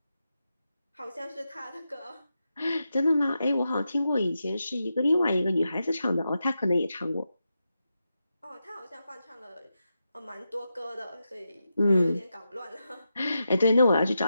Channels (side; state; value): both; inverted; correlation -0.88